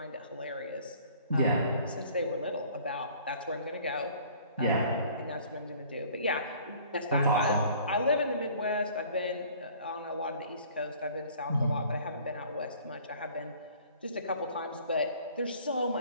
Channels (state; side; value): inverted; both; correlation -0.53